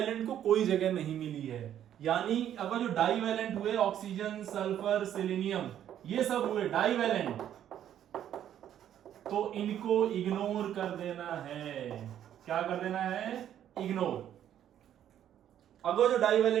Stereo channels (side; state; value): left; quieter; 10.6 dB